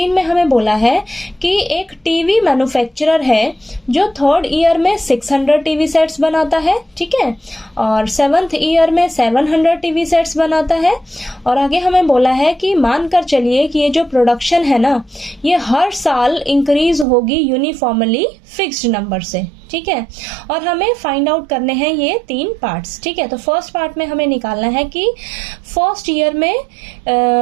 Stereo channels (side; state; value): left; drops out; at 17.1 s